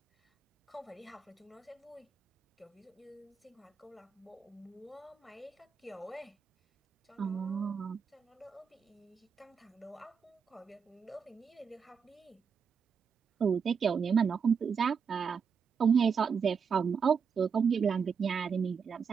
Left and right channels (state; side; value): quieter; left; 6.2 dB